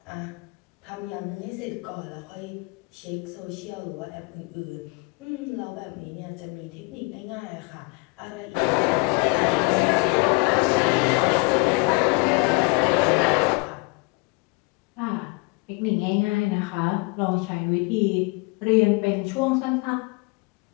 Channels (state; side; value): quieter; right; 29.4 dB